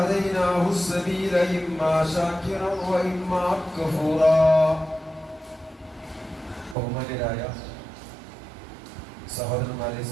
السبيل إما شاكرا وإما كفورا ബഹുമാന്യരായ സഹോദരന്മാരെ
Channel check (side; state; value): left; drops out; at 6.8 s